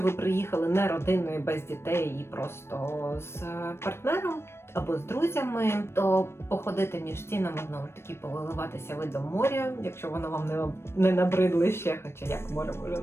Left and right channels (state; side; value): late; right; 0.12 ms